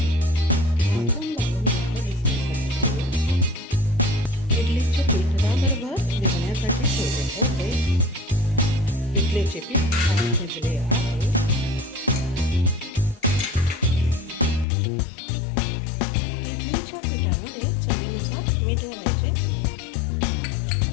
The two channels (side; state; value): right; drops out; at 14.7 s